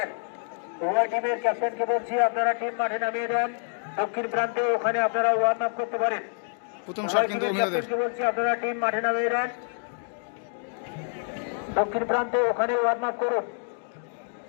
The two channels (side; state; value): right; silent; 58 dB below the other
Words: উভয় টিমের ক্যাপ্টেনকে বলছি আপনারা টিম মাঠে নামিয়ে দেন। দক্ষিণ প্রান্তে ওখানে আপনারা ওয়ার্ম আপ করতে পারেন। প্রথম শট কিন্তু উমিয়াদের। ক্যাপ্টেনকে বলছি আপনারা টিম মাঠে নামিয়ে দেন। দক্ষিণ প্রান্তে ওখানে ওয়ার্ম আপ করুন।